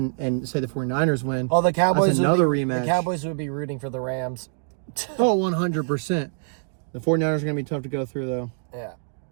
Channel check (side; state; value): left; silent; digital silence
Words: and say the 49ers win, Oh, the Cowboys that's another would be, rematch. The Cowboys would be rooting for the Rams. Oh, 100%. The 49ers are going to be tough to go through, though. Yeah.